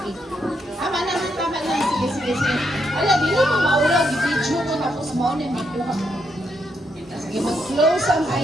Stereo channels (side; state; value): both; normal; correlation 0.78